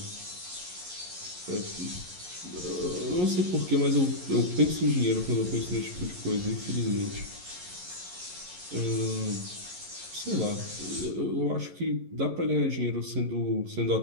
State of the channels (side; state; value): left; late; 11 ms